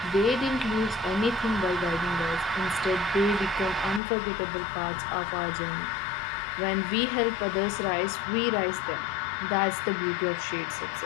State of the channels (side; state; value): right; drops out; at 4.0 s